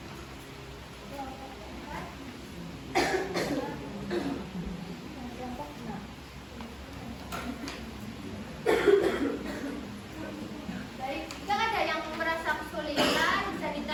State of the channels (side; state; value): both; identical; correlation 1.00